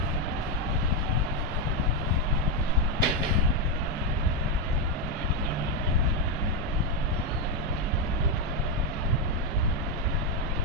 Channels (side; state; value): both; normal; correlation 0.05